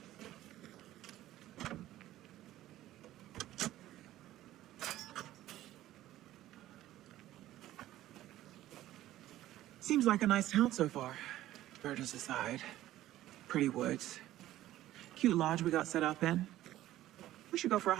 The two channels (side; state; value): left; quieter; 14.4 dB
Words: Seems like a nice town so far. Murders aside. Pretty woods. Cute lodge we got set up in. We should go for a